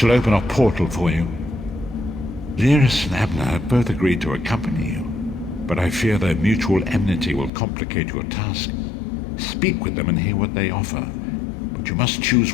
open a portal for you. Lyris and Abner have both agreed to accompany you, but I fear their mutual enmity will complicate your task. Speak with them and hear what they offer, but you must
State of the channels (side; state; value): right; drops out; at 7.5 s